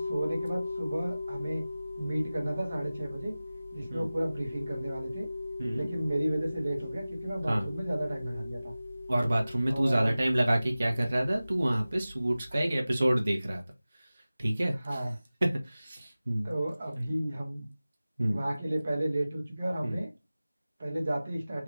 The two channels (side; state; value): both; inverted; correlation -0.97